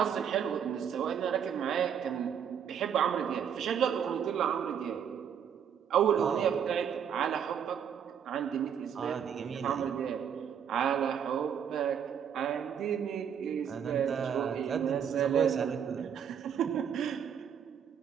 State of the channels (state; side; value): quieter; left; 8.1 dB